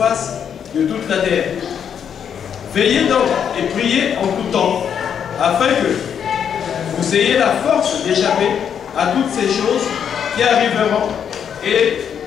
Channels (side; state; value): right; quieter; 8.1 dB